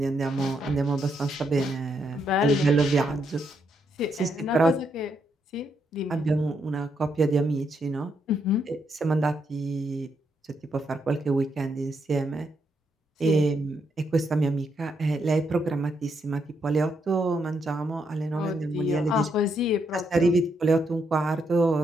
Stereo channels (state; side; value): normal; both; correlation 0.78